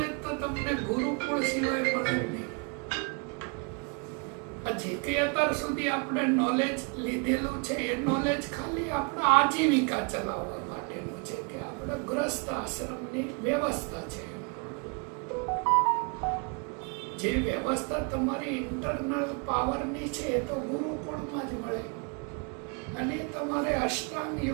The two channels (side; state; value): left; quieter; 34.9 dB